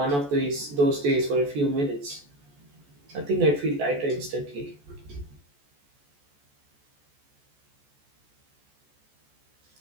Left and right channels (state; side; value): late; left; 14 ms